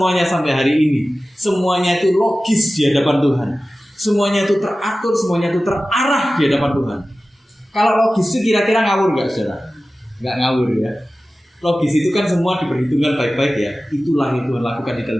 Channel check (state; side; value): normal; both; correlation 0.95